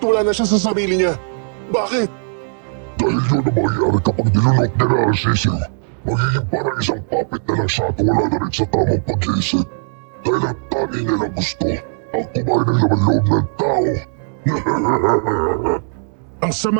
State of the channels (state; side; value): silent; left; digital silence